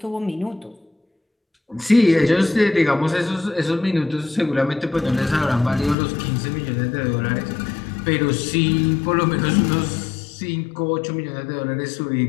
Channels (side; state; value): right; drops out; at 6.0 s